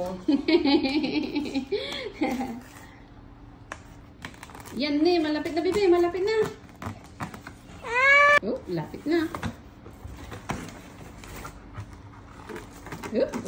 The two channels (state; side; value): identical; both; correlation 1.00